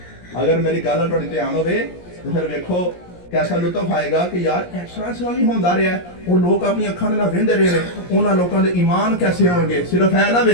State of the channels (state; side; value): late; right; 17 ms